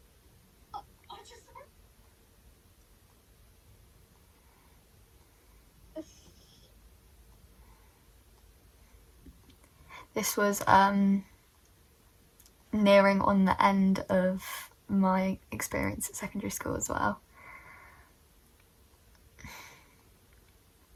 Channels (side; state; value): both; identical; correlation 1.00